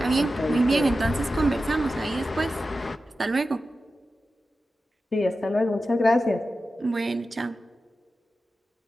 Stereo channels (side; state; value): both; normal; correlation 0.92